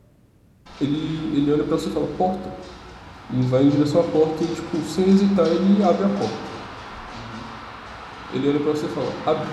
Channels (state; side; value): identical; both; correlation 1.00